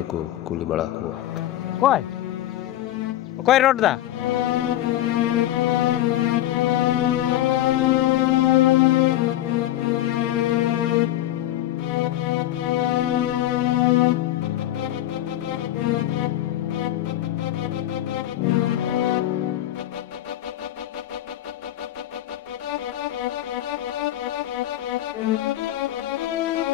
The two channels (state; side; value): quieter; right; 13.5 dB